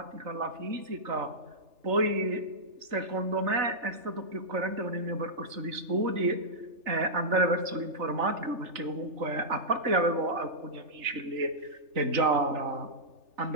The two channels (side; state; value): left; late; 3.3 ms